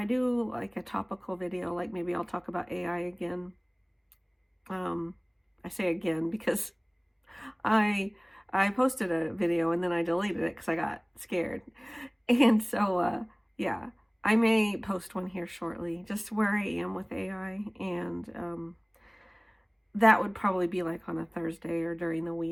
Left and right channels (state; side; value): identical; both; correlation 1.00